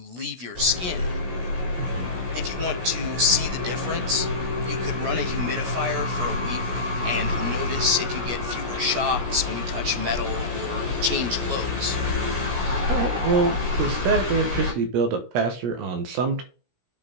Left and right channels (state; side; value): late; left; 17 ms